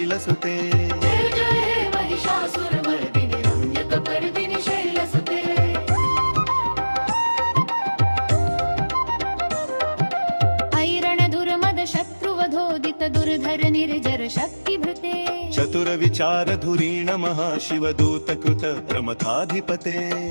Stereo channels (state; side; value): inverted; both; correlation -1.00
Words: जय जय हे महिषासुर मर्दिनि रम्यक पर्दिनि शैलसुते ऐरण दुर्मद शत्रुवधोदित दुर्धर निर्जर शक्तिभृते चतुर विचार धुरीण महाशिव दूत कृत प्रमथाधिपते